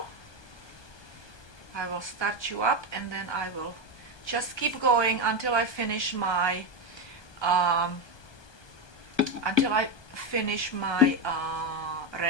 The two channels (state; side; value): late; right; 1.2 ms